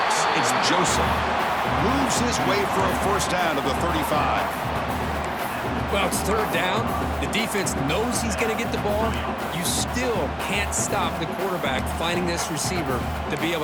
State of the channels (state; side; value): identical; both; correlation 1.00